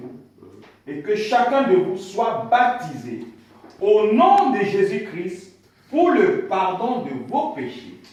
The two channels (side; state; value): both; identical; correlation 1.00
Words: et que chacun de vous soit baptisé au nom de Jésus-Christ pour le pardon de vos péchés,